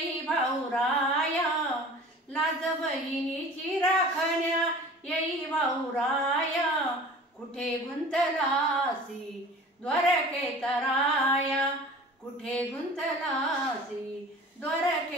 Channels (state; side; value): normal; both; correlation 0.42